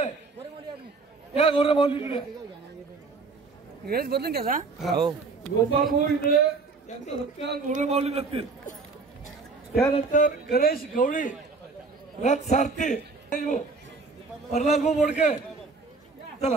या गोरे माऊली इकडे बदलून घ्या. गोपाल भाऊ इकडे यांचा सत्कार गोरे माऊली करतील. त्यानंतर गणेश गवळी रथ सारथी प्रल्हाद भाऊ मोडके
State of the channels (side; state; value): left; quieter; 4.1 dB